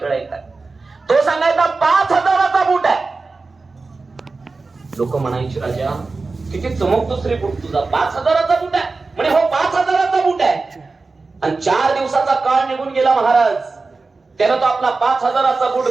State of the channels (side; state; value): left; quieter; 3.9 dB